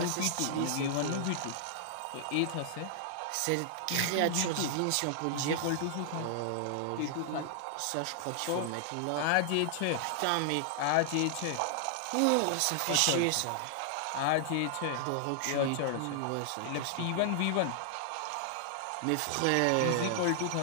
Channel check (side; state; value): both; different; correlation 0.00